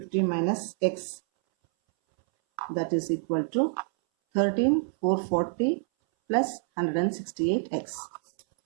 minus X. That is equal to 13,440 plus 168 X.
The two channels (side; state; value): left; silent; 60 dB below the other